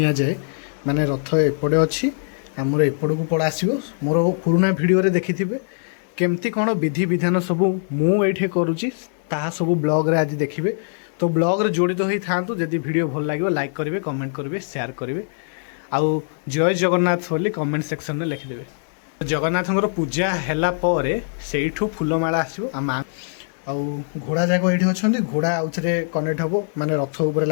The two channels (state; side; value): silent; right; digital silence